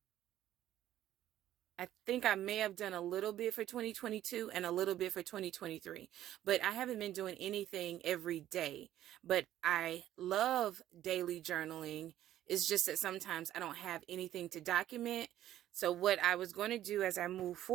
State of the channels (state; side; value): quieter; left; 12.6 dB